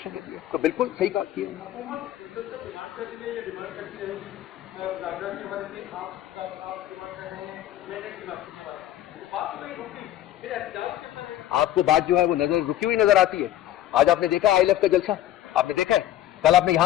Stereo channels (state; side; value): quieter; right; 12.9 dB